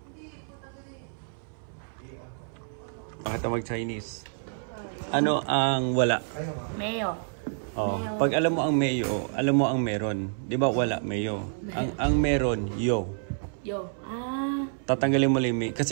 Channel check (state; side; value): silent; left; 59 dB below the other